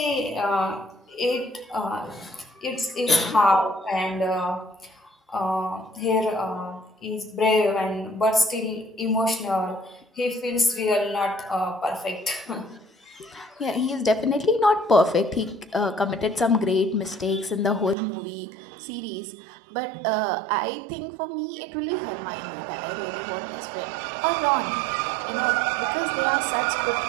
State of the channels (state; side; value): drops out; left; at 17.9 s